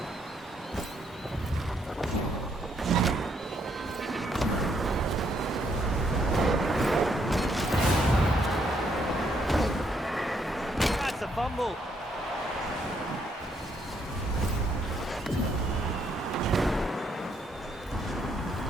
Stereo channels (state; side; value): normal; both; correlation 0.73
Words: That's a fumble.